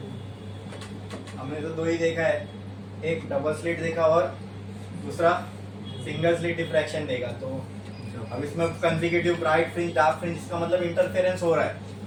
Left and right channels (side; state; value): both; identical; correlation 1.00